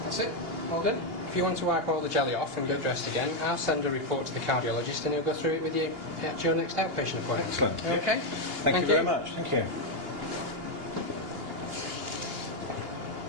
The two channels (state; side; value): late; left; 2.8 ms